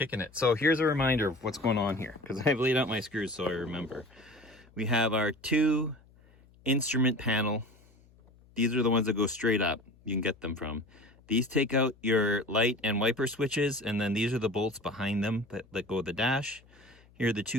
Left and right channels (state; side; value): noise; left; hum, 28 dB below the sound